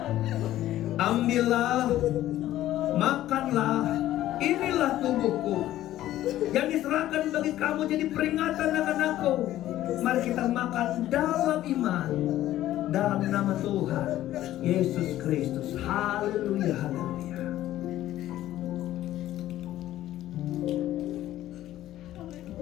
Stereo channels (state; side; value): quieter; right; 13.8 dB